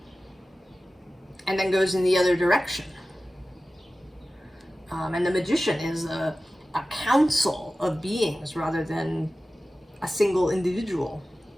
And then goes in the other direction. And the Magician is a council of beings rather than a single individual.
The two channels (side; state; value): both; normal; correlation 0.95